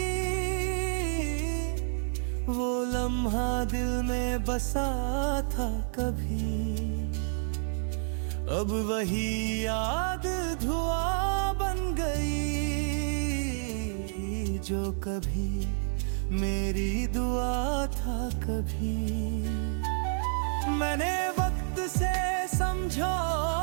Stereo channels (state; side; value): silent; left; 58 dB below the other